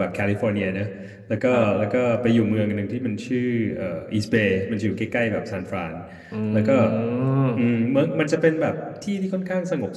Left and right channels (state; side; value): identical; both; correlation 1.00